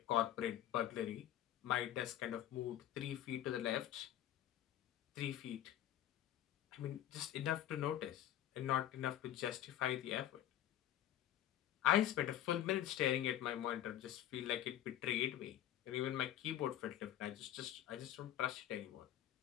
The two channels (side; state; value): right; quieter; 12.0 dB